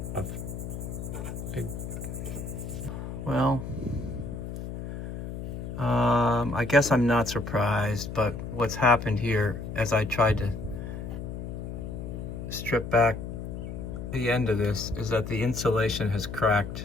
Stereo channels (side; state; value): left; noise; hum, 7 dB below the sound